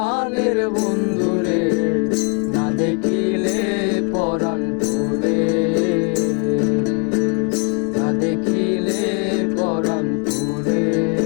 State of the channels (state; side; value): quieter; right; 33.9 dB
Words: বন্ধুরে, না দেখিলে পরাণ পুরে, না দেখিলে পরাণ পুরে।